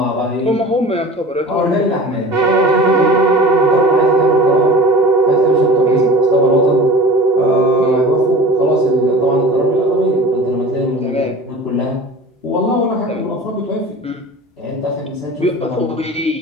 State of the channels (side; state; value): both; normal; correlation 0.38